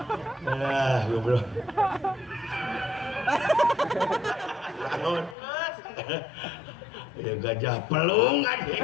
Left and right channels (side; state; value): right; drops out; at 5.4 s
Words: goblok. Naon? Ya gajah pelung